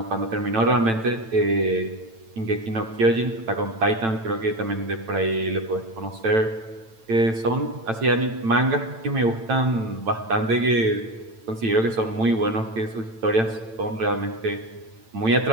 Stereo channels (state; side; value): late; left; 9.0 ms